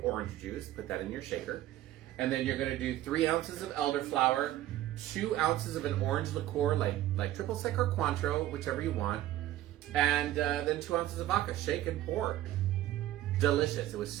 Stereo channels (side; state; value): left; quieter; 14.0 dB